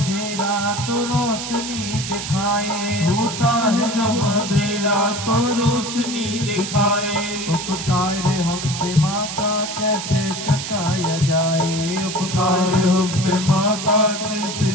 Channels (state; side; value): noise; right; hiss, 6 dB below the sound